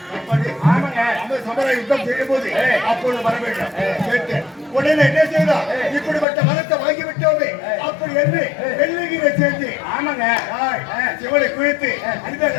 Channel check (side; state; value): right; drops out; at 6.2 s